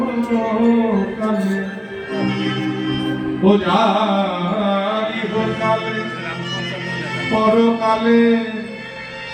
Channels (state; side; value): identical; both; correlation 1.00